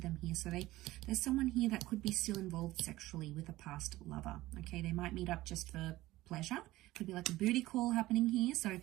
here. So there's someone here that could be still involved sexually with a past lover. Okay, they might meet up just for pleasure. Could be like a booty call happening here. So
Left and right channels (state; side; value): quieter; left; 17.3 dB